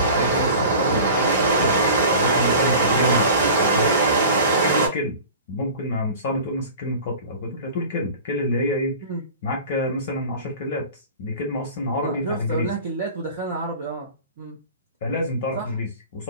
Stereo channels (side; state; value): both; inverted; correlation -0.39